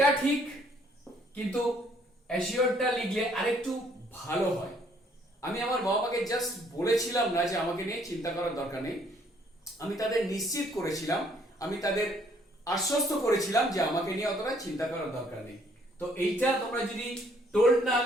ঠিক, কিন্তু অ্যাসিওরটা লিখলে আরেকটু ভালো হয়। আমি আমার বাবা মাকে জাস্ট বলেছিলাম না যে আমাকে নিয়ে চিন্তা করার দরকার নেই, আমি তাদের নিশ্চিত করেছিলাম, আমি তাদের আশ্বস্ত করেছিলাম যে আমাকে নিয়ে অতটা চিন্তা করার দরকার নেই। তো এইটা তোমরা যদি টোল্ড না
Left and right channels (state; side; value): normal; both; correlation 0.64